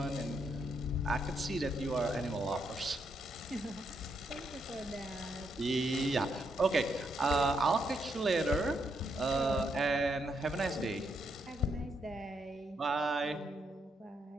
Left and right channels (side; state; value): both; normal; correlation 0.78